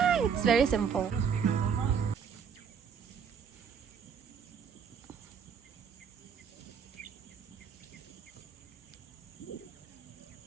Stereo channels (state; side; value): quieter; left; 6.9 dB